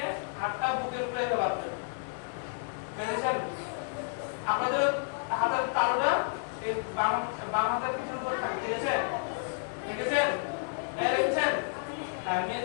হাতটা বুকের উপরে রাখবেন পেরেছেন আপনাদের হাতের তালুটা এই বাম হাতের পিঠের উপর থাকে দেখেছেন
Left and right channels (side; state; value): right; silent; digital silence